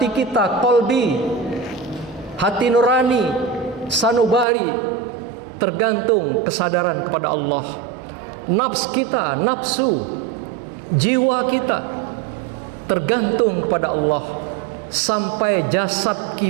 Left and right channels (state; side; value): drops out; left; at 4.5 s